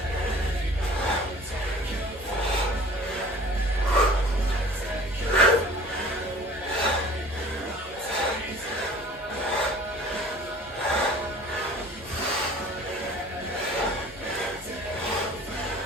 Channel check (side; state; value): both; normal; correlation 0.46